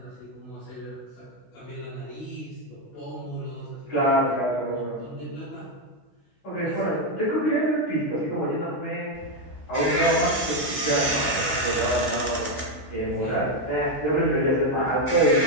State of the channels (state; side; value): late; right; 16 ms